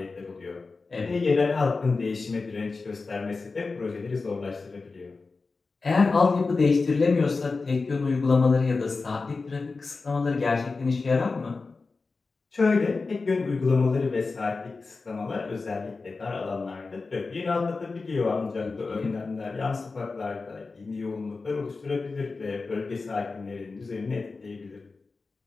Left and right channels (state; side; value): quieter; right; 4.0 dB